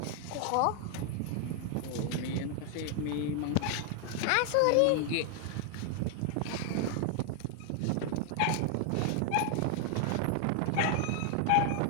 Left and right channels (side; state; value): both; different; correlation 0.00